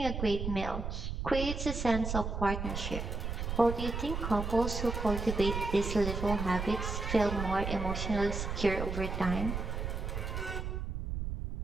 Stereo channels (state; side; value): noise; right; rumble, 3 dB below the sound